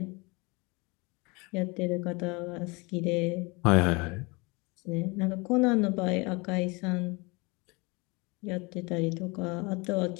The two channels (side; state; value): right; quieter; 27.0 dB